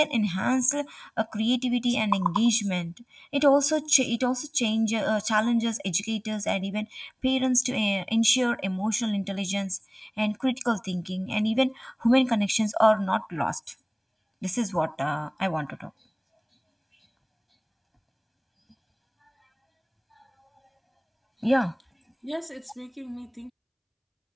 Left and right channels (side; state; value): both; identical; correlation 1.00